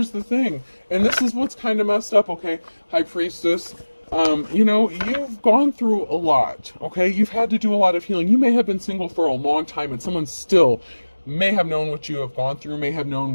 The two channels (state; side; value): inverted; both; correlation -1.00